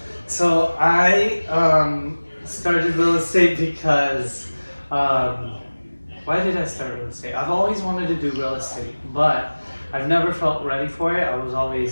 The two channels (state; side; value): inverted; both; correlation -1.00